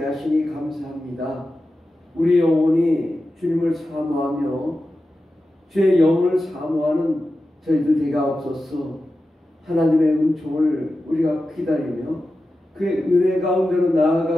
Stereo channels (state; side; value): normal; both; correlation 0.93